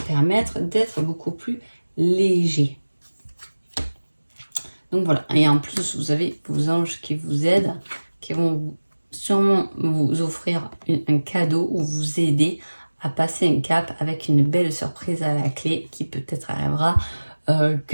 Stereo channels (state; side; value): inverted; both; correlation -1.00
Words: d'être beaucoup plus léger. Donc voilà, et en plus vous avez vos anges qui vous aident, qui vont sûrement vous offrir un cadeau ou vous aider à passer un cap avec une belle surprise à la clé qui peut-être arrivera